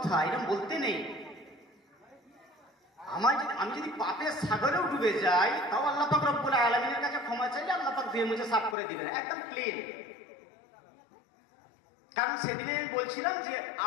এরকম বলতে নেই। আমি যদি পাপের সাগরেও ডুবে যাই তাও আল্লাহ পাক রব্বুল আলামিনের কাছে ক্ষমা চাইলে আল্লাহ পাক ধুয়ে মুছে সাফ করে দিবেন, একদম ক্লিন। কারণ সেদিনে বলছিলাম যে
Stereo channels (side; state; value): right; drops out; at 8.8 s